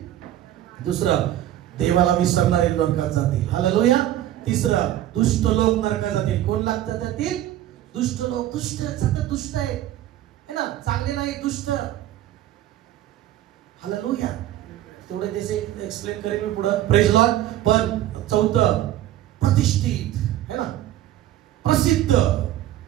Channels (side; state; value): left; quieter; 13.1 dB